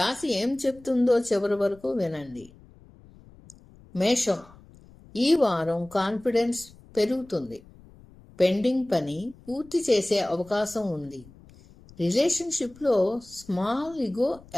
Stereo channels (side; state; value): left; noise; rumble, 24 dB below the sound